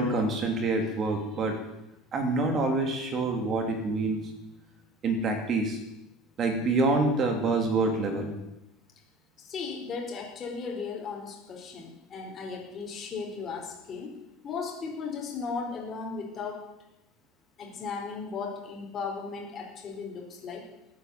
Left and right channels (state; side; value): normal; both; correlation 0.43